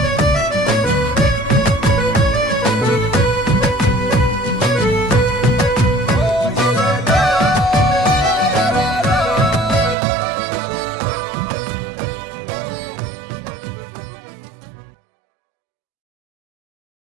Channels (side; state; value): left; drops out; at 10.0 s